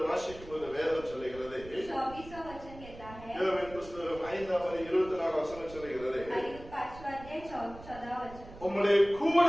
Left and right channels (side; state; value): right; noise; rumble, 16 dB below the sound